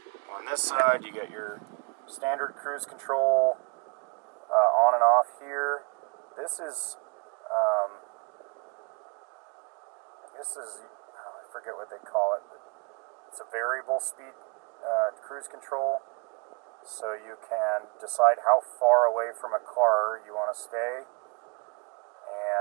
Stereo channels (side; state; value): left; quieter; 32.6 dB